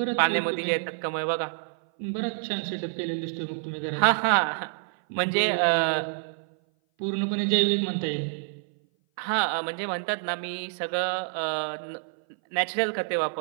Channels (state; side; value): silent; left; 57 dB below the other